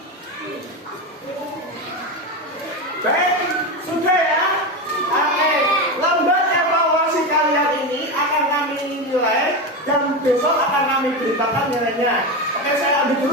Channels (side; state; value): both; normal; correlation 0.17